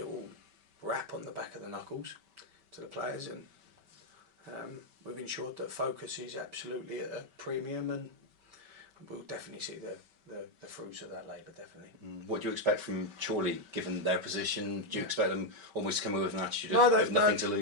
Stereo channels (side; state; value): left; late; 5.2 ms